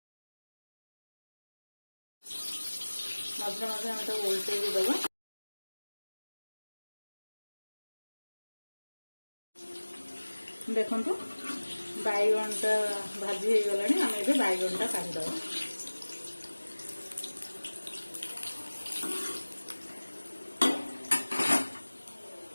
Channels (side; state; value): both; inverted; correlation -1.00